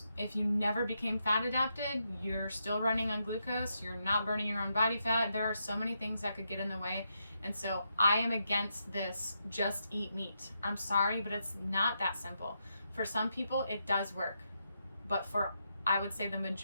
If you never became fat adapted, you're still running on glucose, you're not burning your own body fat. There are so many things that could get in the way. And so I am against this just eat meat. I'm sorry, but it's not that simple. For some people, it does work. But for, I would say, the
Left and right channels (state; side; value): inverted; both; correlation -0.82